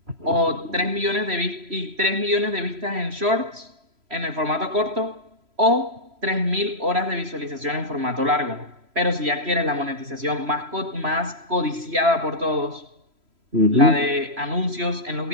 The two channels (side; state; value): left; late; 3.0 ms